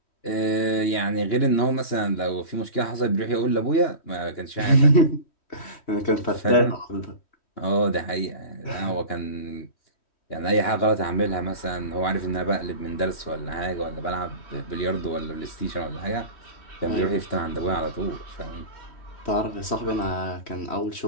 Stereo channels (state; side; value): late; right; 3.1 ms